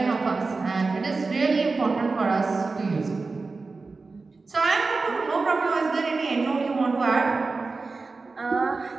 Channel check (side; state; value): left; quieter; 4.0 dB